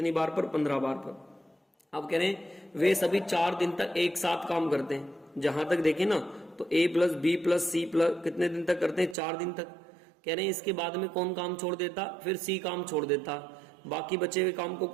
बार पर? 15 बार पर। अब कह रहे हैं वे सभी 4 दिन तक एक साथ काम करते हैं। जहां तक देखें ना, तो A plus B plus C plus कितने दिन तक करते हैं? 4 दिन तक। कह रहे हैं इसके बाद में कौन काम छोड़ देता? फिर सी काम छोड़ देता। बाकी बचे हुए काम को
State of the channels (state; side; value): drops out; left; at 9.2 s